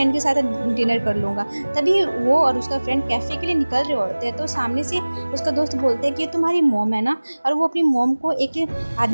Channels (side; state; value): both; inverted; correlation -1.00